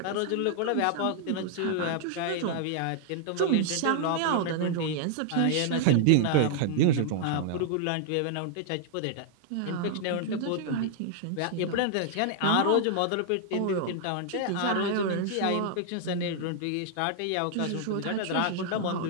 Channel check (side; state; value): both; different; correlation -0.01